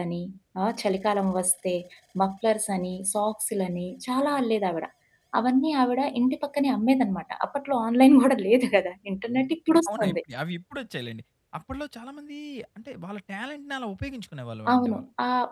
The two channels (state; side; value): identical; both; correlation 1.00